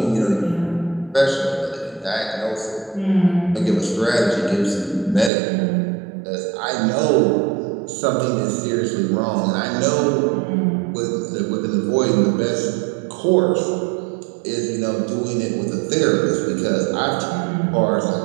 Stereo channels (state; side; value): drops out; left; at 5.3 s